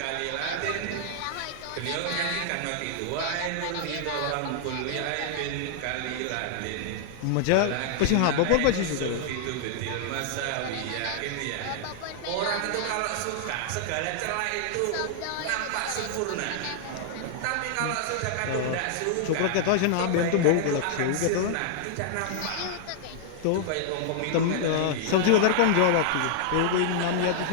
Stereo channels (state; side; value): different; both; correlation -0.01